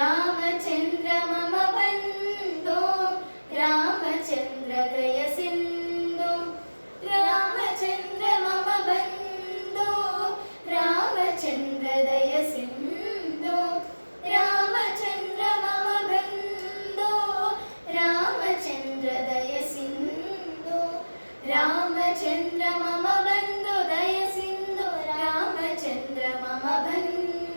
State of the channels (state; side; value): inverted; both; correlation -1.00